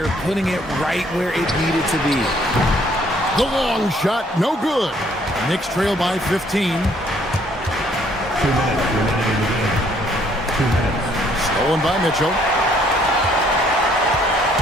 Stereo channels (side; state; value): both; normal; correlation 0.64